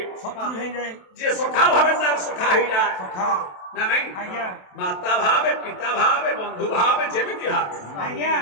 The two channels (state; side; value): late; right; 27 ms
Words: ଶତ୍ରୁ ହେଇଯାଏ ଯିଏ ସଖା ଭାବେ ତାର ସଖା ହେଇଯାଏ ସଖା ନା ନାଇଁ ଆଜ୍ଞା ମାତା ଭାବେ ପିତା ଭାବେ ବନ୍ଧୁ ଭାବେ ଯେମିତି ଭାବେ ଆଜ୍ଞା